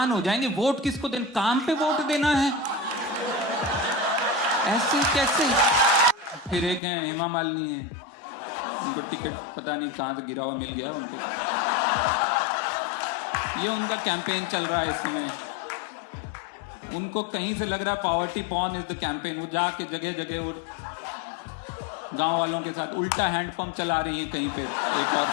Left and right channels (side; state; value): right; drops out; at 6.8 s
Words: हो जाएंगे। वोट किसको देना? काम पे वोट देना है, ऐसे कैसे? फिर एक है हेमा मालिनी है, उनको टिकट पता नहीं कहां से गिरा हुआ मिल गया उनको, ये उनका कैंपेन चल रहा है इस समय। उनको कहीं से लग रहा है poverty porn is the campaign. वो जाके जगह जगह वो गांव वालों के साथ उल्टा हैंडपंप चला रही है कहीं पे। एक और